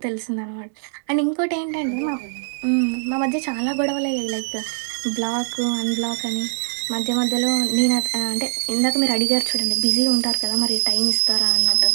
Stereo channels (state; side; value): silent; left; digital silence